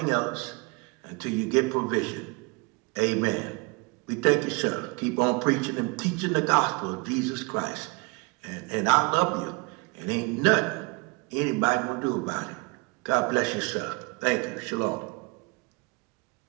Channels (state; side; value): quieter; left; 29.2 dB